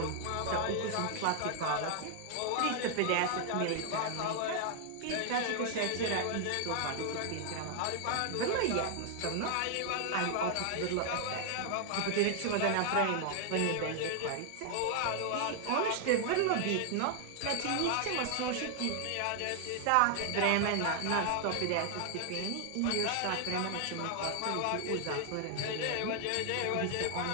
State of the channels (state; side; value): different; both; correlation 0.00